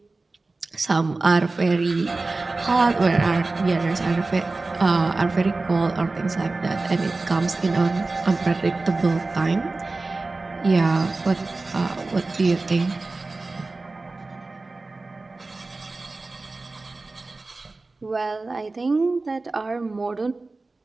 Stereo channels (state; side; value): quieter; left; 3.4 dB